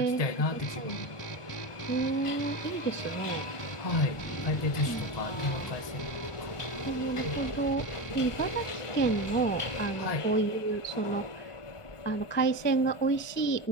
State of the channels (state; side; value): late; right; 1.2 ms